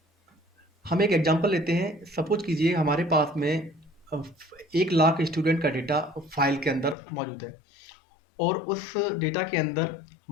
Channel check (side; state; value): right; drops out; at 7.0 s